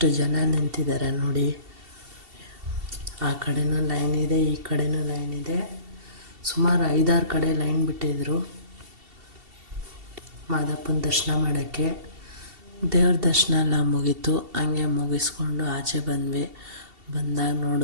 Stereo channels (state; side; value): late; left; 2.7 ms